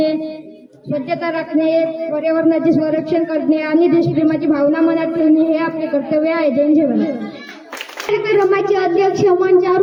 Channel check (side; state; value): both; identical; correlation 1.00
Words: स्वच्छता राखणे, पर्यावरणाचे संरक्षण करणे आणि देशप्रेमाची भावना मनात ठेवणे हे आपले कर्तव्य आहे. जय जवान. कार्यक्रमाचे अध्यक्ष, मंचावर